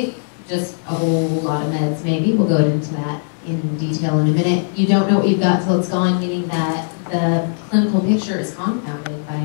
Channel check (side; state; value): right; silent; digital silence